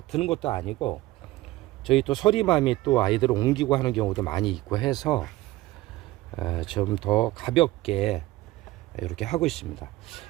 드는 것도 아니고, 저희 또 서리맘이 또 아이들을 옮기고 하는 경우도 많이 있고 해서 좀 더 가볍게 이렇게 하고 있습니다.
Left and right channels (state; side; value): quieter; left; 17.8 dB